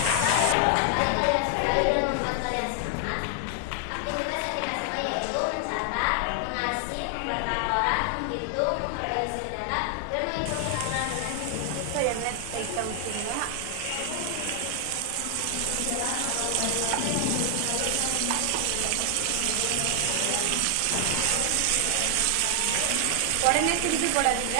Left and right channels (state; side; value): different; both; correlation 0.00